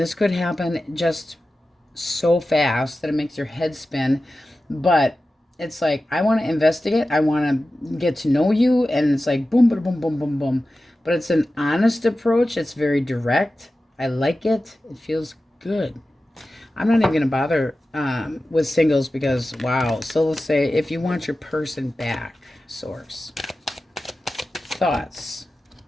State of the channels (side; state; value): both; normal; correlation 0.94